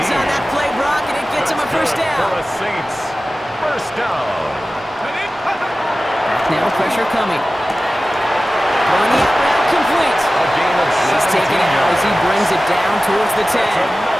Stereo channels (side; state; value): both; normal; correlation 0.96